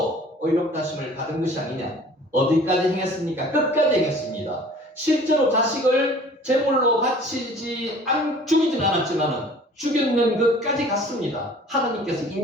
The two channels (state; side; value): normal; both; correlation 0.49